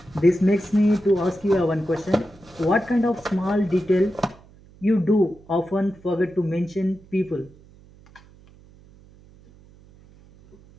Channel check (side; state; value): right; noise; hum, 25 dB below the sound